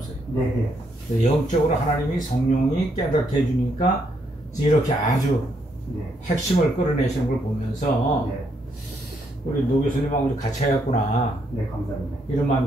네, 영적으로 하나님이 성령이 깨닫게 해주니까 이렇게 아주 네, 핵심을 끌어내시는 걸 보면서 네, 우리 노 교수님하고 같이 해야겠구나 네, 감사합니다. 이런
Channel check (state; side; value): normal; both; correlation 0.75